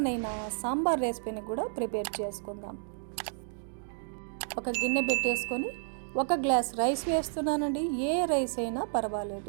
సాంబార్ రెసిపీని కూడా ప్రిపేర్ చేసుకుందాం. ఒక గిన్నె పెట్టేసుకొని ఒక గ్లాస్ రైస్ వేస్తున్నానండి. ఏ రైస్ అయినా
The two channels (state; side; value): silent; left; digital silence